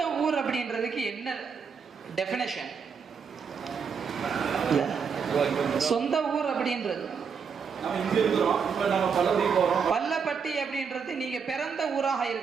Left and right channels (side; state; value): left; quieter; 6.2 dB